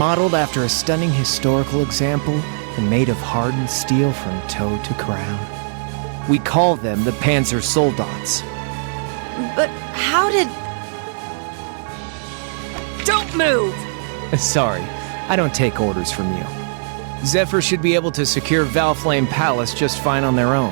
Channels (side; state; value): left; silent; digital silence